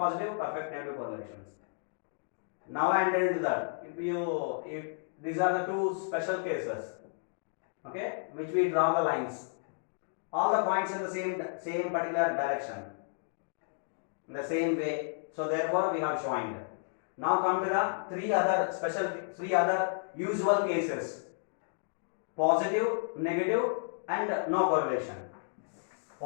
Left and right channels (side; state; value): right; silent; digital silence